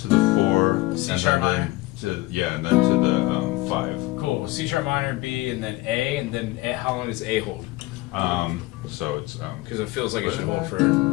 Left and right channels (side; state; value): right; quieter; 19.6 dB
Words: the 4, C and sharp then minor. and then to the 5. Cool. C sharp minor, B, and then A, and then A, how long does A hold? So it's Because it feels like it should hold for.